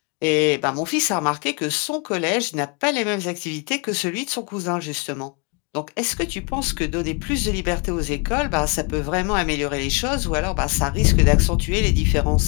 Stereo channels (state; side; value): quieter; right; 32.1 dB